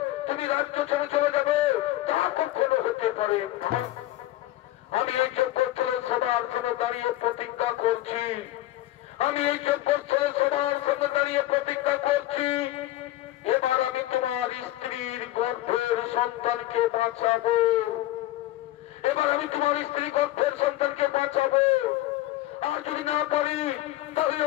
তুমি রাজ্য ছেড়ে চলে যাবে, তা কখনো হতে পারে না। আমি এই যজ্ঞস্থলে সবার সামনে দাঁড়িয়ে প্রতিজ্ঞা করছি, আমি এই যজ্ঞস্থলে সবার সামনে দাঁড়িয়ে প্রতিজ্ঞা করছি, এবার আমি তোমার স্ত্রীর গর্ভের সন্তানকে বাঁচাবো, এবার আমি তোমার স্ত্রী গর্ভের সন্তানকে বাঁচাবো। আর যদি না পারি তাহলে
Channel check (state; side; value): quieter; right; 15.7 dB